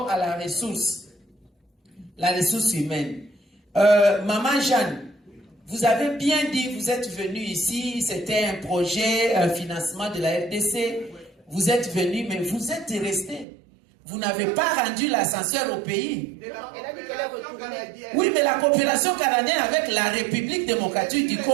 à la ressource humaine. Maman Jeanne, vous avez bien dit, vous êtes venu ici, c'était un projet, un financement de la RDC. Vous êtes venu, mais vous êtes resté. Vous n'avez pas rendu l'ascenseur au pays. Oui, mais la coopération canadienne avec la République démocratique du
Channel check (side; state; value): left; drops out; at 13.5 s